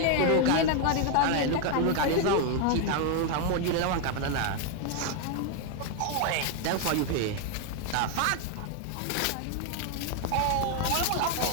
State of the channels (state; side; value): different; both; correlation 0.01